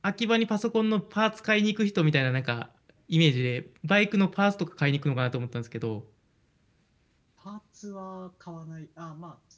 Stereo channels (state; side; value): identical; both; correlation 1.00